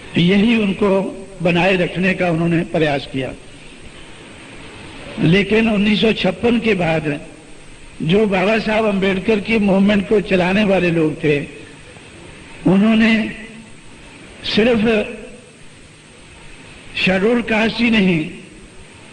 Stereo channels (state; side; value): identical; both; correlation 1.00